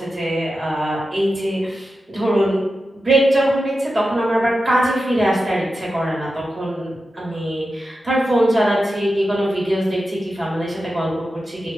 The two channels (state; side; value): normal; both; correlation 0.91